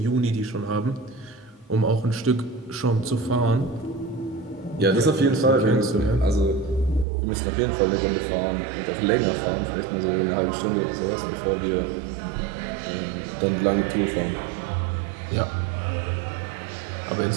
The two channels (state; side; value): drops out; left; at 7.1 s